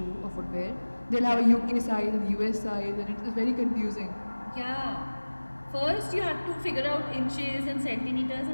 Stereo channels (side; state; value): both; inverted; correlation -1.00